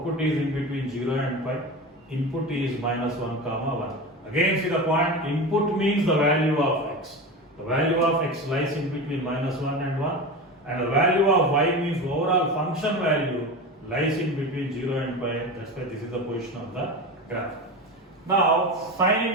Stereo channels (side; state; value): both; normal; correlation 0.26